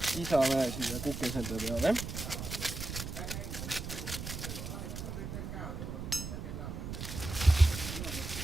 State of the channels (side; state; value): right; noise; rumble, 6 dB below the sound